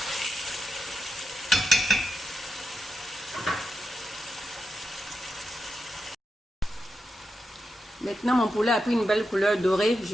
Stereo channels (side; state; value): both; normal; correlation 0.87